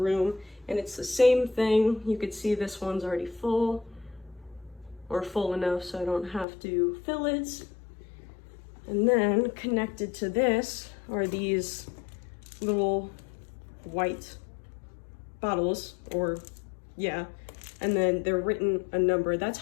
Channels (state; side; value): drops out; right; at 6.5 s